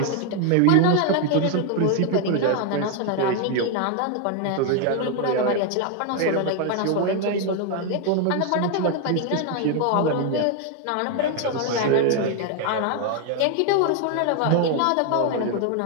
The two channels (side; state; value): both; different; correlation 0.01